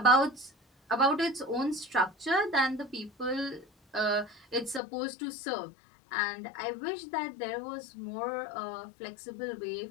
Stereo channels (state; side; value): drops out; right; at 4.8 s